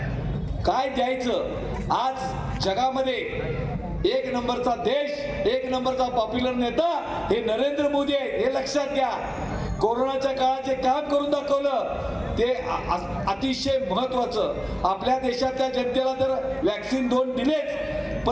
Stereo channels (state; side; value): identical; both; correlation 1.00